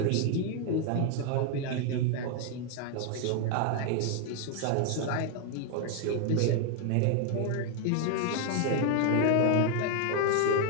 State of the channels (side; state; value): both; different; correlation 0.00